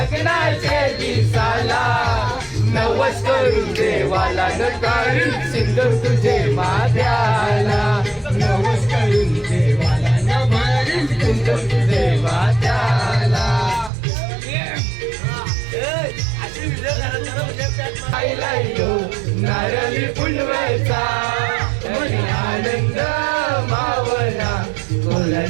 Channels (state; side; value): drops out; left; at 13.9 s